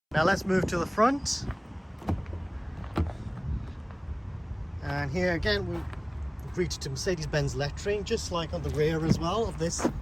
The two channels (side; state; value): both; identical; correlation 1.00